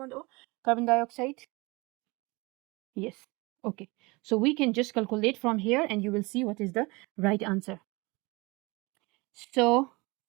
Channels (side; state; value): left; quieter; 25.1 dB